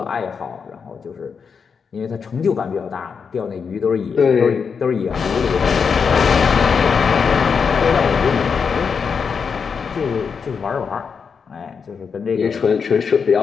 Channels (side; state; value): right; quieter; 6.0 dB